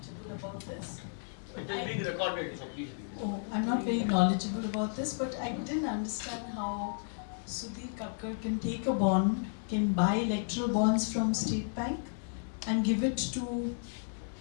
about this. It is being recorded, so please. Oh, I'm not very knowledgeable about this, but I didn't understand how Sudhir Chhokar can take a bond, can buy electoral bonds from State Bank, and give it to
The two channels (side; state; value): right; silent; 56 dB below the other